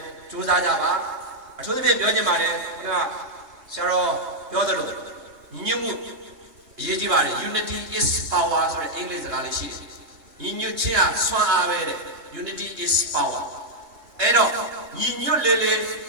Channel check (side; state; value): left; late; 3.1 ms